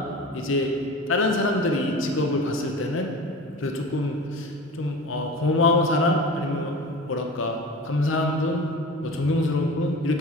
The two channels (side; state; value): both; normal; correlation 0.34